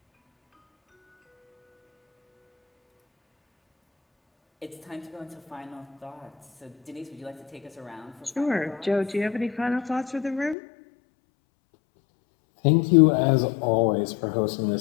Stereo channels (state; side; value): drops out; right; at 10.6 s